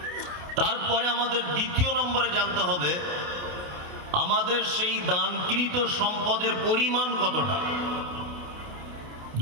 তারপরে আমাদের দ্বিতীয় নম্বরে জানতে হবে আমাদের সেই দানকৃত সম্পদের পরিমাণ কতটা।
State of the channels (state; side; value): late; left; 28 ms